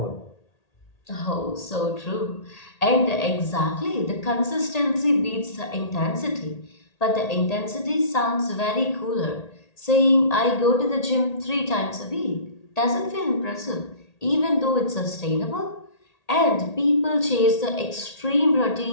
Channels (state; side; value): late; right; 1.8 ms